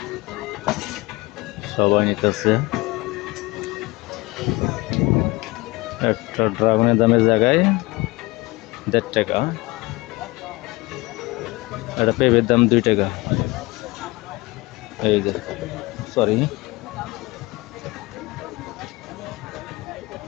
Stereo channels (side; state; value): right; quieter; 22.4 dB